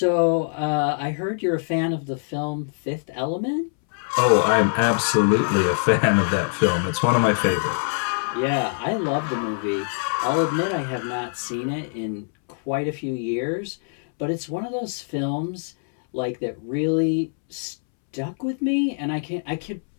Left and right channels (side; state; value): right; silent; 63 dB below the other